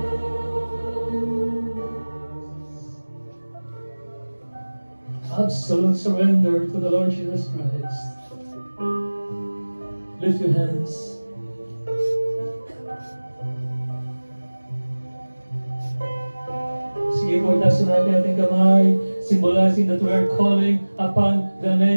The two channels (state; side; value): inverted; both; correlation -1.00